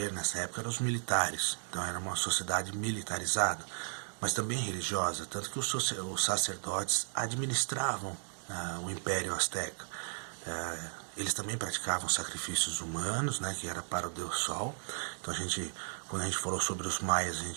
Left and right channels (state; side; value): silent; left; digital silence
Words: nessa época eram os militares, então era uma sociedade militarizada, mas também religiosa, tanto que os sacerdotes administravam o Império Azteca. Eles também praticavam sacrifícios humanos, né, que era para o Deus Sol. Então quando a gente falou sobre os maias, a